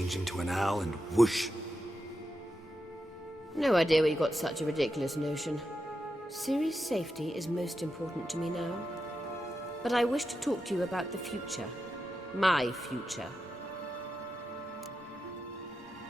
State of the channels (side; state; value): both; normal; correlation 0.88